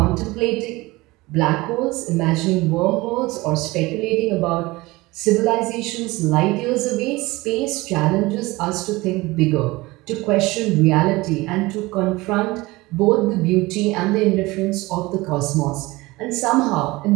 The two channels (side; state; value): left; quieter; 21.1 dB